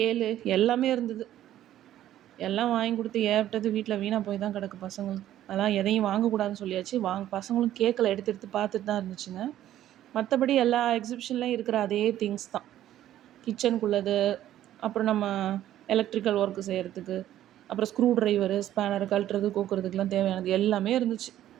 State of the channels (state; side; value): quieter; left; 12.5 dB